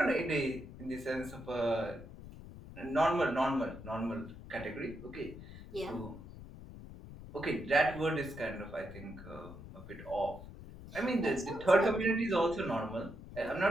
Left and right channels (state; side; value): noise; left; rumble, 14 dB below the sound